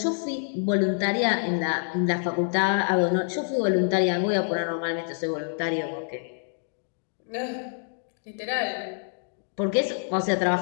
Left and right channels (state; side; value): silent; right; digital silence